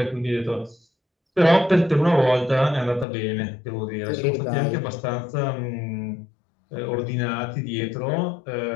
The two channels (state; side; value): drops out; right; at 3.1 s